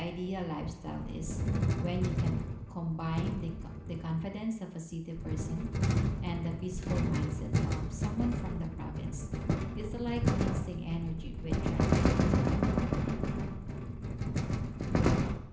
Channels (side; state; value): both; identical; correlation 1.00